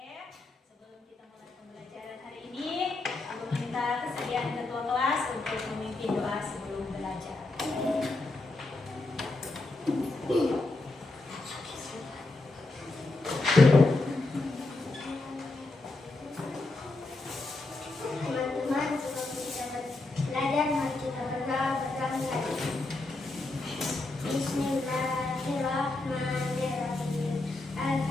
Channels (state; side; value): quieter; right; 3.0 dB